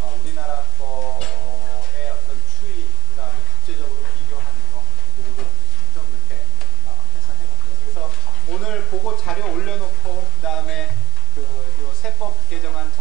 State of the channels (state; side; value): normal; both; correlation 0.33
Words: 우리나라 거의 어떤 추이, 그 다음에 국제적으로 비교하는 거 그거를 좀 이렇게 해서 해봤고요. 그래서 오늘 그거 자료 올려놓고 그 다음에 요 세법 개정안